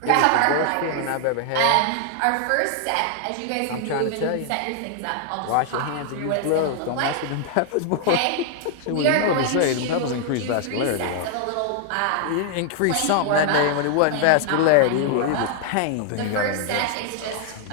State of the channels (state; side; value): different; both; correlation 0.00